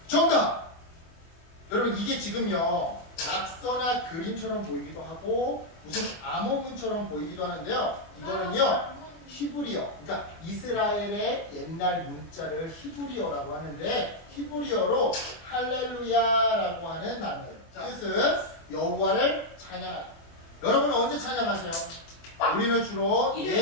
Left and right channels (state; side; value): late; right; 24 ms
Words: 정답! 여러분 이게 지금요 낙서나 그림처럼 보이기도 하고 무슨 암호문처럼 보이기도 하는데요. 이거는요 히브리어, 그러니까 이스라엘의 옛날 문자를 히브리어라고 하는데 히브리어로 할렐루야라고 하는 단어예요. 뜻은 여호와를 찬양하다. 여러분은 언제 찬양하세요? 우리는 주로